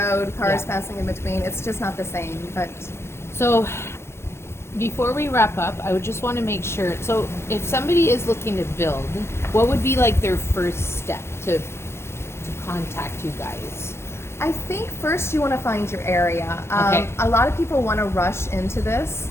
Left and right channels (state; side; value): late; right; 0.12 ms